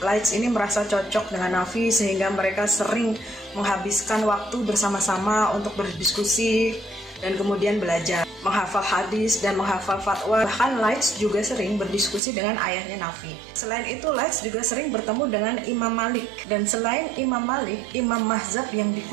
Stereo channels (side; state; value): left; drops out; at 12.2 s